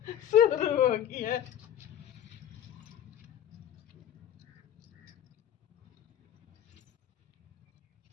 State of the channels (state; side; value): quieter; right; 10.8 dB